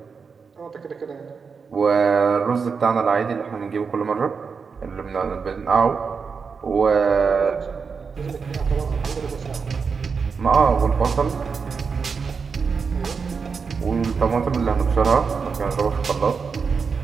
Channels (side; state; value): left; quieter; 5.5 dB